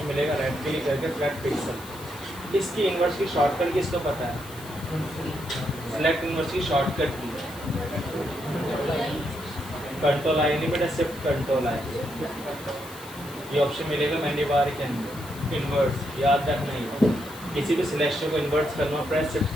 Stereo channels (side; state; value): left; noise; hiss, 17 dB below the sound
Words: मिलेगा राइट क्लिक करके फ्लैट पिक्सल। इसकी इन्वर्स की शॉर्टकट किसको पता है? सिलेक्ट इन्वर्स की शॉर्टकट की कंट्रोल आई नहीं बेटा, सिर्फ कंट्रोल आई। ये ऑप्शन मिलेगा मेन्यू बार के अंदर, इन्वर्स याद रखना ही। किसी भी सिलेक्शन को इन्वर्स करना प्रेस सिर्फ